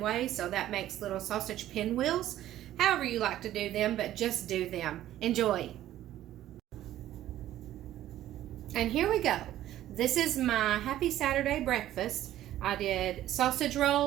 So that makes little sausage pinwheels. However you like to do them, but just do them. Enjoy. And here we go. This is my happy Saturday breakfast. I did sausage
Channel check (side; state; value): left; quieter; 13.2 dB